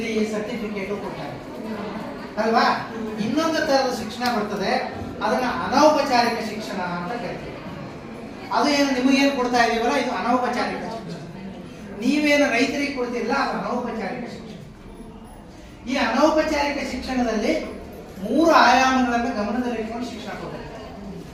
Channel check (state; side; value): identical; both; correlation 1.00